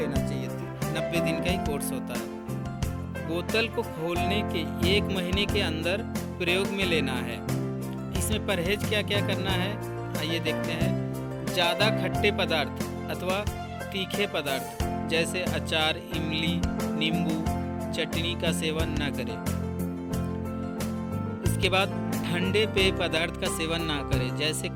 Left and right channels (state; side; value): identical; both; correlation 1.00